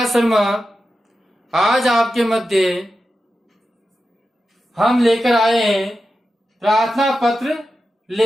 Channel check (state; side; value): normal; both; correlation 0.91